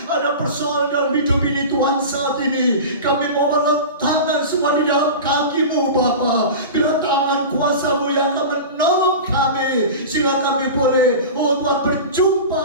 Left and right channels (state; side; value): inverted; both; correlation -0.30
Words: ada persoalan dalam hidup ini Tuhan, saat ini kami mau meletakkan semua di dalam kaki-Mu Bapa. Biar tangan kuasa-Mu yang akan menolong kami, sehingga kami boleh, oh Tuhan,